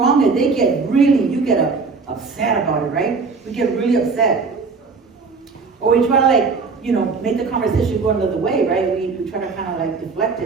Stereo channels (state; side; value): quieter; left; 4.6 dB